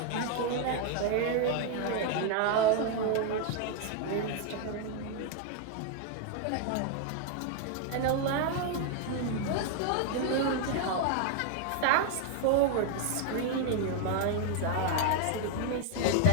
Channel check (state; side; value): different; both; correlation 0.00